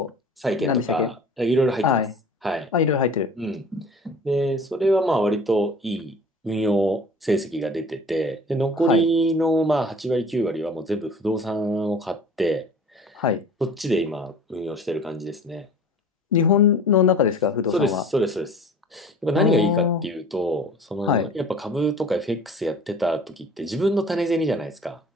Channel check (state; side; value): normal; both; correlation 0.44